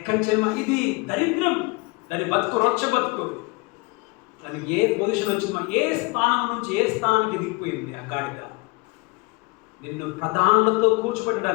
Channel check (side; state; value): right; quieter; 26.7 dB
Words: చేయమా? ఇది దరిద్రం, దాని బతుకు రొచ్చ బతుకు. దానికి ఏ పొజిషన్ వచ్చిందో, ఏ స్థానం నుంచి ఏ స్థానానికి దిగిపోయింది ఆ గాడిద. నిన్ను ప్రధానులతో